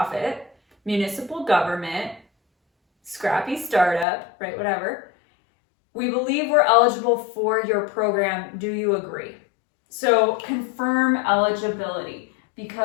municipal government, scrappy startup, right, whatever. We believe we're eligible for your program. Do you agree? So confirm eligibility,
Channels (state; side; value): drops out; right; at 4.0 s